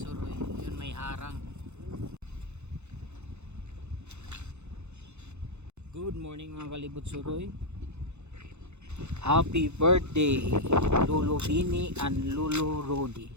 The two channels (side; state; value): left; late; 0.82 ms